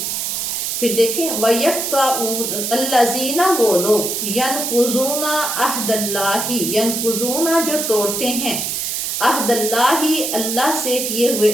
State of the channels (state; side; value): noise; right; hiss, 2 dB below the sound